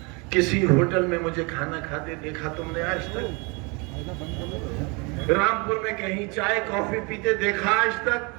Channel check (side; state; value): left; quieter; 29.9 dB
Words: किसी होटल में मुझे खाना खाते देखा तुमने आज तक? रामपुर में कहीं चाय कॉफी पीते देखा आज तक?